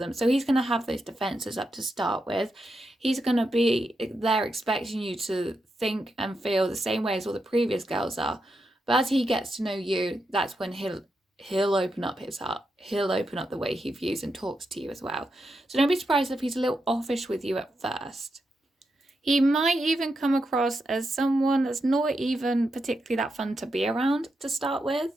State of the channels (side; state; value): both; normal; correlation 0.85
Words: So he's going to have those defenses up to start with. He's going to be there expecting you to think and feel the same way as all the previous girls are. But as he gets to know you, that's when he'll open up his heart. He'll open up the way he views and talks to you as well. So don't be surprised if he's a little offish with you at first. He might even come across as someone that's not even particularly that fun to be around to start with.